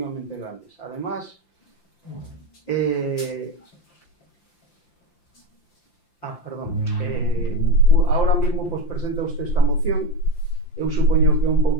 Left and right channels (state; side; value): late; right; 5.8 ms